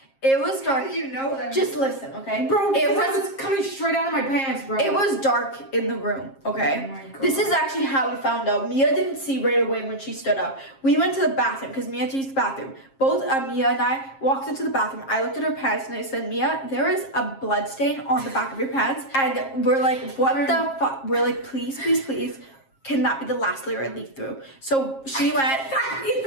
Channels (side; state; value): right; late; 7.5 ms